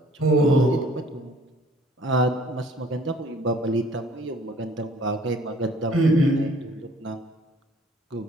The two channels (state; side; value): normal; both; correlation 0.56